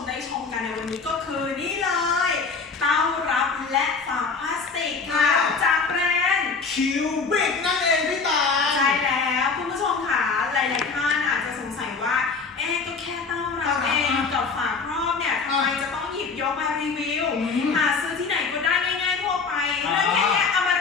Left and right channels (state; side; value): quieter; right; 4.8 dB